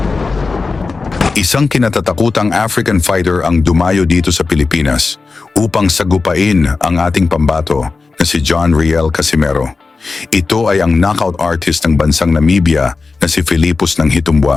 Isang kinatatakutang African fighter ang dumayo dito sa Pilipinas upang sagupain ang ating pambato na si John Riel Casimero. Ito ay ang knockout artist ng bansang Namibia na si Filipos ng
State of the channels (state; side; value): quieter; right; 4.1 dB